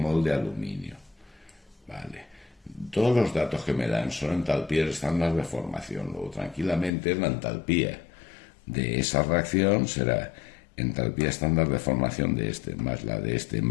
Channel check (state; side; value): drops out; right; at 6.9 s